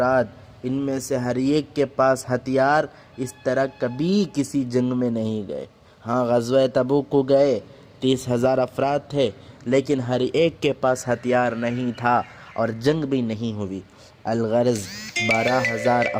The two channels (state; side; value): identical; both; correlation 1.00